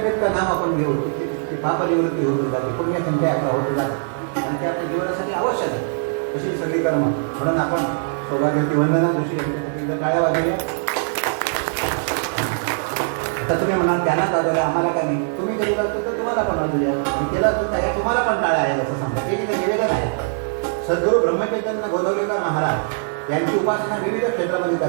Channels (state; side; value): silent; left; digital silence